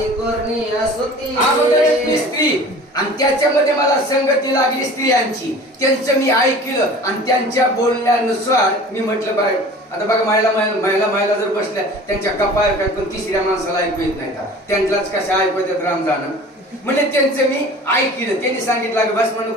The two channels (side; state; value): both; normal; correlation 0.42